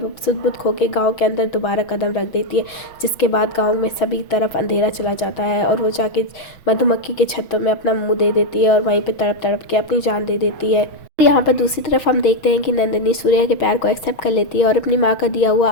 वो सुध-बुध खो के गाँव के अंदर दोबारा कदम रख देती है। जिसके बाद गाँव में सभी तरफ अंधेरा चला जाता है और वो जाके मधुमक्खी के छत्तों में अपना मुँह दे देती है और वहीं पर तड़प तड़प के अपनी जान दे देती है। यहाँ पर दूसरी तरफ हम देखते हैं कि नंदिनी सूर्या के प्यार को एक्सेप्ट कर लेती है और अपनी माँ का दिया हुआ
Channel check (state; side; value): late; right; 6.0 ms